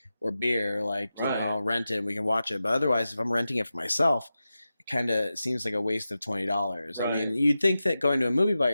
or beer, like, Right. rent it and we can watch it. But otherwise if I'm renting it for myself, it kind of seems like a waste of $20. I mean, Right. you'd think that going to a movie by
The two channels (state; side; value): inverted; both; correlation -0.93